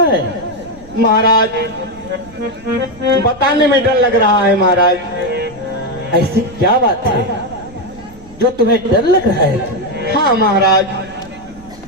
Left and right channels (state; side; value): noise; right; rumble, 21 dB below the sound